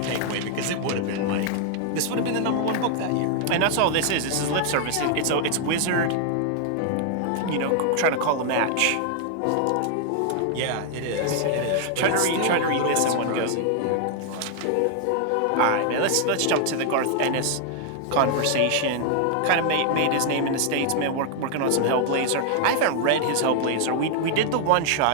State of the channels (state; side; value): different; both; correlation 0.00